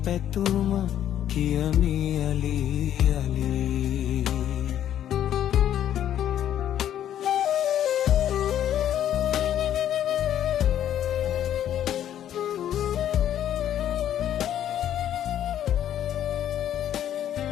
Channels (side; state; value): right; quieter; 10.8 dB